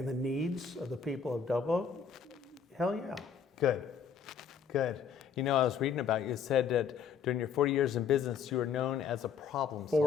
the needs of the people of Double Oak? Hell yeah. Good, good. You know, I was reading about you, it said that During your 40 years in business, you were known as a problem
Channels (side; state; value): right; quieter; 6.8 dB